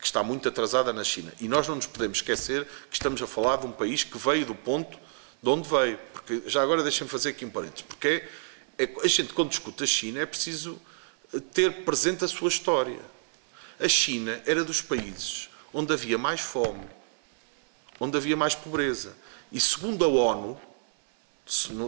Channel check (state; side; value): silent; left; 59 dB below the other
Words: está muito atrasada na China. E nós não nos podemos esquecer que estamos a falar de um país que veio do ponto de onde veio. Porque, já agora deixem-me fazer aqui um parênteses, porque a gente, quando discute a China, é preciso ter presente a sua história. A China era dos países onde havia mais fome, onde havia mais pobreza. E segundo a ONU,